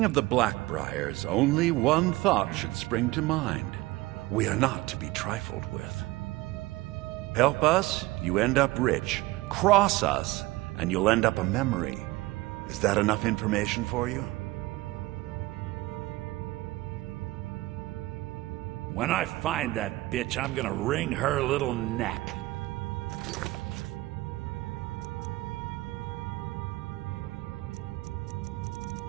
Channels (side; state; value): left; quieter; 19.5 dB